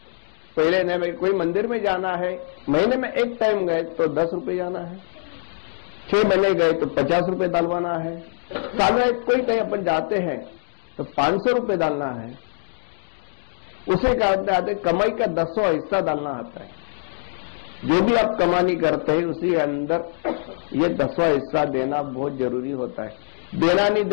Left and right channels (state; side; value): silent; right; digital silence